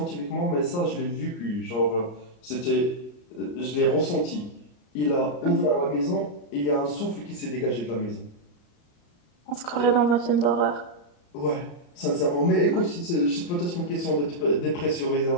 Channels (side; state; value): right; late; 34 ms